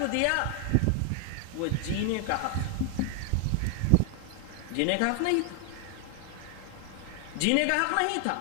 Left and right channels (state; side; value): different; both; correlation 0.00